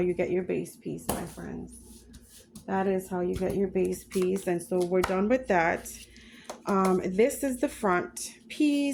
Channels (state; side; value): identical; both; correlation 1.00